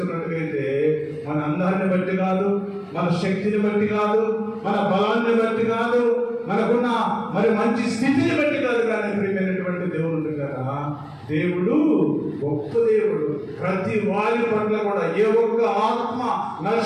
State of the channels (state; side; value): identical; both; correlation 1.00